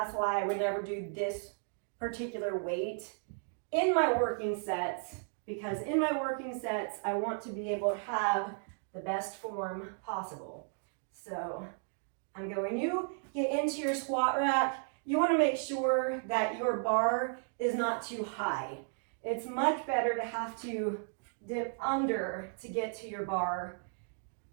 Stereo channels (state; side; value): silent; left; 55 dB below the other